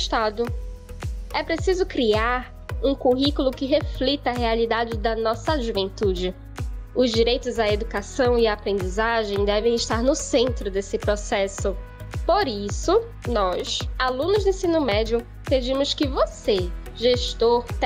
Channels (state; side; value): identical; both; correlation 1.00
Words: É preciso criar um currículo que reflita a realidade da nossa juventude. Os direitos à educação e à aprendizagem devem estar no centro desse processo. Por isso, nós, alunos do ensino médio, pedimos que você, gestor,